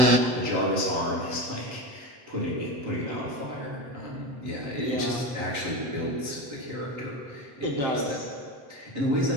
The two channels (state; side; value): late; left; 7.7 ms